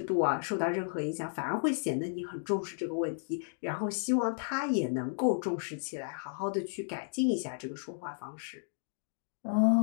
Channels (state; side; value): silent; right; digital silence